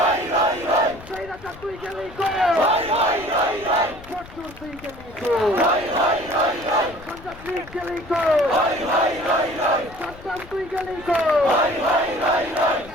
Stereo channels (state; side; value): noise; left; rumble, 19 dB below the sound